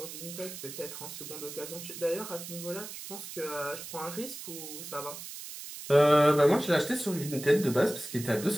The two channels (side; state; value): right; noise; hiss, 11 dB below the sound